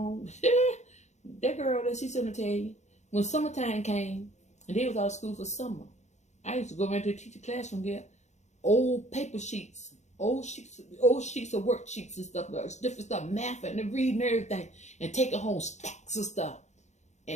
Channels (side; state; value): right; late; 0.33 ms